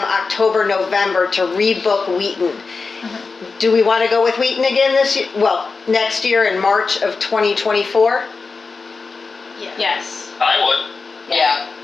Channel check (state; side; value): quieter; right; 4.4 dB